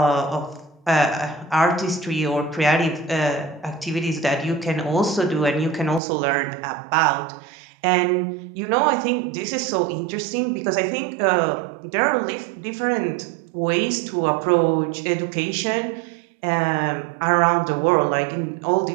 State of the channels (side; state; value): left; drops out; at 6.0 s